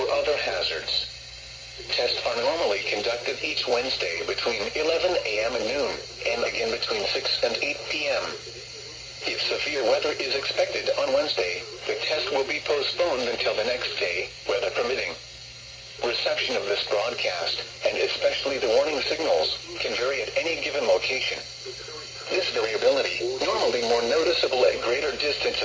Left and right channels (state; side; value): identical; both; correlation 1.00